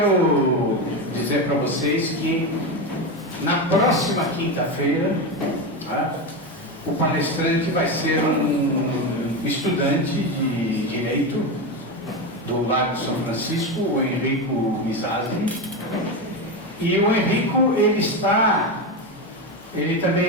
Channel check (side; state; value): both; normal; correlation 0.16